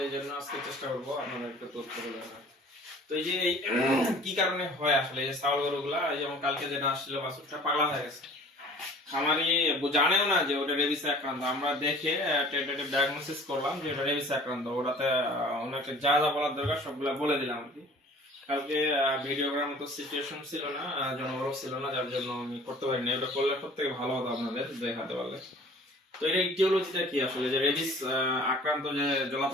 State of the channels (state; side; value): normal; both; correlation 0.48